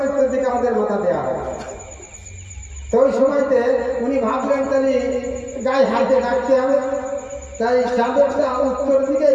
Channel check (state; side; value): identical; both; correlation 1.00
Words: উত্তর দিকে আমাদের মাথা দেওয়া হয়। তো ওই সময়তে উনি ভাবলেন তাহলে গায়ে হাতে ডাকতে হবে, তাই চাদরটা উত্তর দিকে